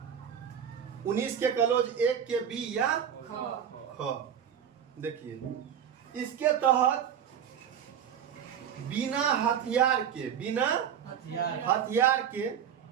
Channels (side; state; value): left; quieter; 8.7 dB